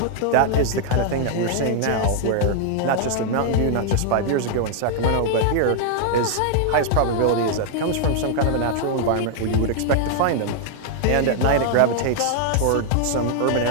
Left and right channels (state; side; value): different; both; correlation 0.00